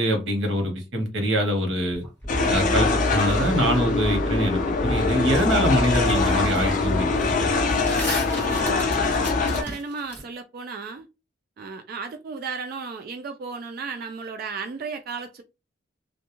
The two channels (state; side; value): normal; both; correlation 0.45